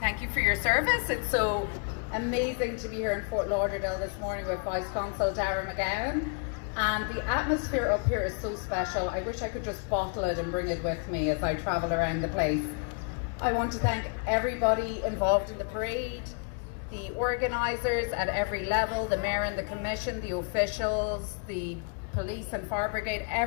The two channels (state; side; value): quieter; right; 39.6 dB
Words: for your service. It's so amazing to be here in Fort Lauderdale this morning with Vice Consul Dara McGowan. And the atmosphere up here is so special. I wish I could just bottle it and bring it with me as I travel around the place. I want to thank everybody involved in the parade, the organisers at every level, the mayor and the commission, the officials, the police and fire brigade,